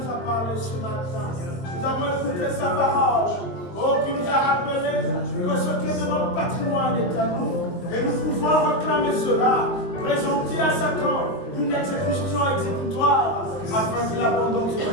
parlé ce matin. Nous avons écouté sa parole. Oh, qui nous a rappelé que ce qui est de notre patrimoine est à nous. Et nous pouvons réclamer cela, présenter à Satan une exécution exécutoire, afin qu'il abandonne ce qui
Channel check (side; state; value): right; late; 22 ms